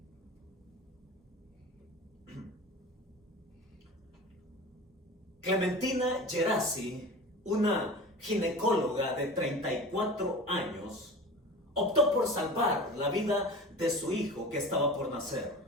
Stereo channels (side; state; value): both; normal; correlation 0.35